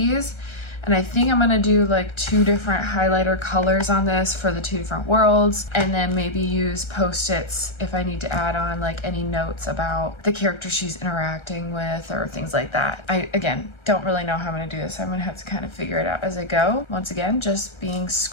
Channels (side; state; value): right; late; 1.3 ms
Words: And I think I'm gonna do like 2 different highlighter colors on this for the 2 different worlds, and then maybe use post-its if I need to add on like any notes about the character she's interacting with or things like that. I, again, don't really know how I'm gonna do this. I'm gonna have to kind of figure it out as I go. Once again, just being